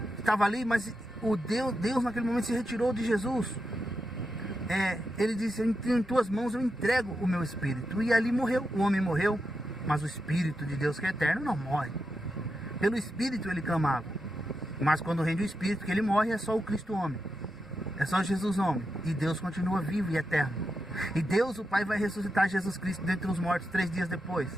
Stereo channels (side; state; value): both; normal; correlation 0.87